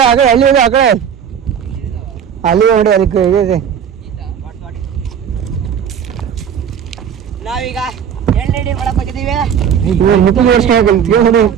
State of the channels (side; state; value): left; quieter; 8.2 dB